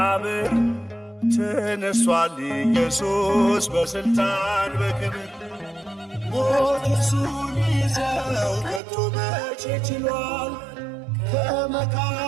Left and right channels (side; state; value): left; drops out; at 8.8 s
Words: ተነሷል ኢየሱስ በሥልጣን በክብር። ሞት እርሱን ሊይዘው ከቶ መቼ ችሏል?